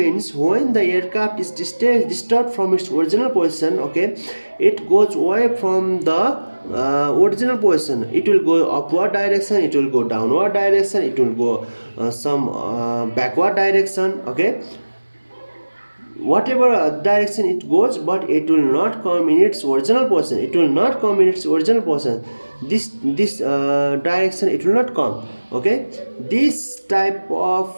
when the aircraft is disturbed from its original position, okay, it goes away from the original position. It will go upward direction, it will go downward direction, it will go some backward direction. Okay, whatever direction it goes, but it will not come in its original position. This direction it will not come. Okay, this type of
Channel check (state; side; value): inverted; both; correlation -1.00